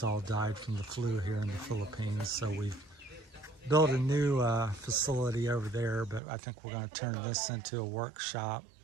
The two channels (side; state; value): left; drops out; at 6.2 s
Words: all died from the flu here in the Philippines, so we've built a new facility over there, but I think we're going to turn this into a workshop